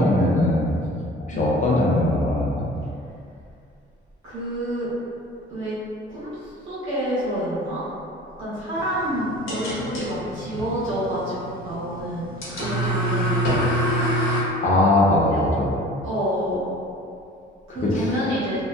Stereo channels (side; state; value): both; normal; correlation 0.43